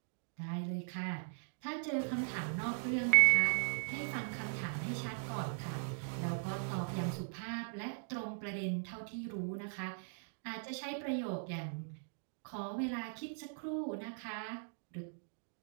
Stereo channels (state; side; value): silent; left; digital silence